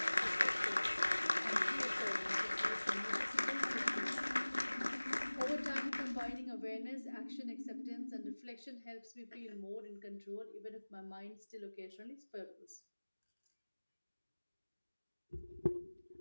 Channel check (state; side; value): inverted; both; correlation -1.00